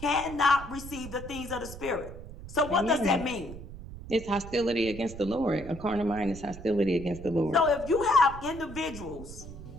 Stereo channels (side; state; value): right; noise; rumble, 13 dB below the sound